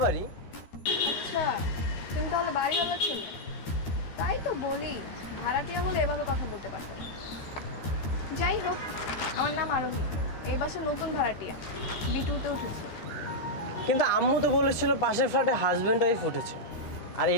বাড়ি। আচ্ছা, তুমি তাহলে বাড়িওয়ালা ছেলে? তাই তো বলি, ভাড়াটিয়া হলে এভাবে কথা বলতে পারো। যাই হোক, আমার নাম আরোহী, এই বাসার নতুন ভাড়াটিয়া, বিটুতে উঠেছে। কিন্তু আম্মু তো বলেছিল পাশের ফ্ল্যাটে হাজব্যান্ড ওয়াইফ উঠেছে, আর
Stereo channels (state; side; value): late; right; 13 ms